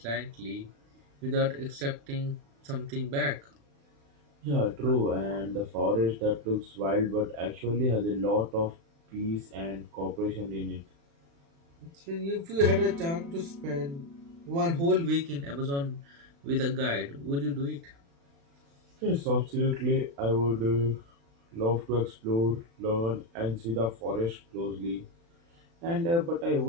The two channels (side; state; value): left; late; 36 ms